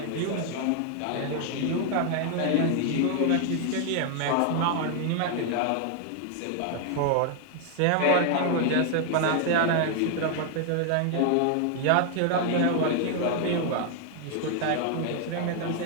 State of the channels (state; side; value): different; both; correlation 0.00